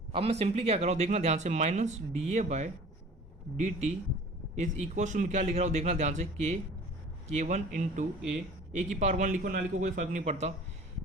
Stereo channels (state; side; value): normal; both; correlation 0.45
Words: अब मैं सिंपली क्या कर रहा हूँ, देखना ध्यान से, minus D A by D T is equal to क्या लिख रहा हूँ, देखना ध्यान से, k1 इंटू ए की पावर 1 लिखो ना लिखो कोई फर्क नहीं पड़ता,